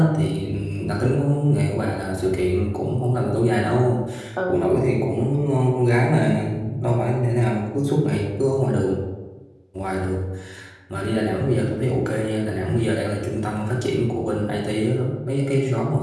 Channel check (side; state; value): both; identical; correlation 1.00